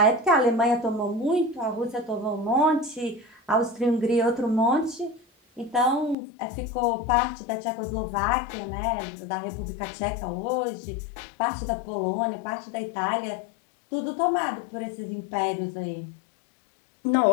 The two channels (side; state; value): right; drops out; at 6.2 s